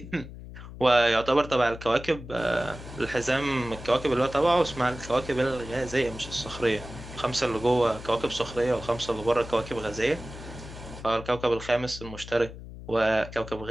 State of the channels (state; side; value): noise; left; hum, 13 dB below the sound